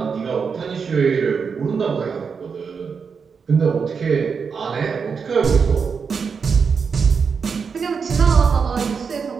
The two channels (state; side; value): quieter; left; 5.8 dB